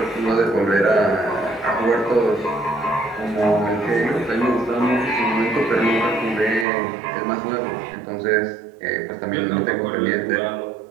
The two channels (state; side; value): drops out; left; at 6.7 s